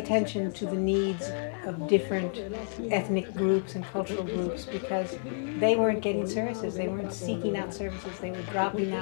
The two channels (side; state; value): right; silent; 58 dB below the other